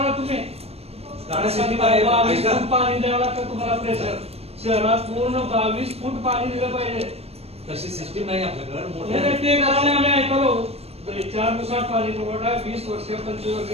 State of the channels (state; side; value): late; left; 0.29 ms